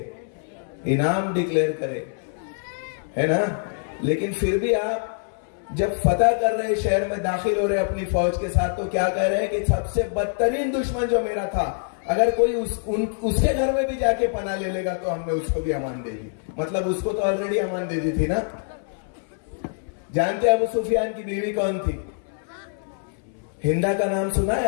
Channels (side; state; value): right; silent; 62 dB below the other